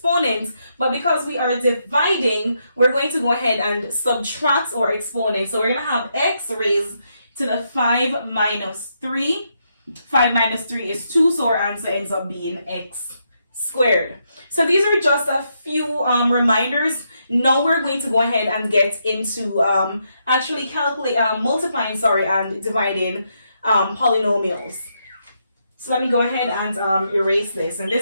But because we are dividing, we're going to go ahead and subtract our exponent. So we're going to have x raised to the 5 minus 3. 5 minus 3 is 2, so our answer ends up being x squared. So these are just a few reminders. Now we're going to go ahead and get into actually multiplying and dividing polynomials. So let me go ahead and erase this. And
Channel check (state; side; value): inverted; both; correlation -0.79